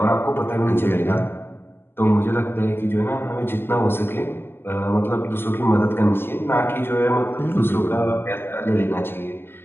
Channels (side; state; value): right; late; 0.11 ms